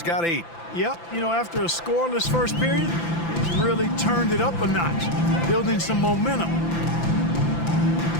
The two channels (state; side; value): late; right; 5.9 ms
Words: got 8. Yep, you know, after a scoreless first period, he's really turned it up a notch, building some momentum.